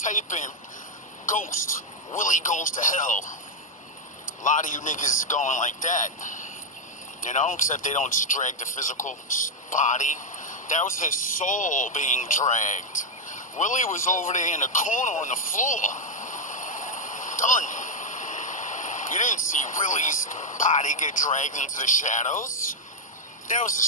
in Ghost. Willie goes to hell. A lot of you niggas is going like that. You know, except they don't just drag the physical body. That was his soul being dragged. Willie was over there in the corner on the floor. Done. You didn't see Willie's body get dragged into the shadows. That was his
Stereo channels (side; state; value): both; normal; correlation 0.00